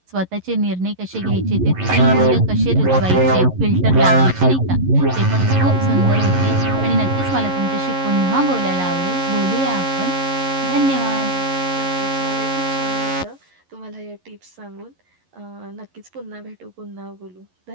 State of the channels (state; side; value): late; left; 11 ms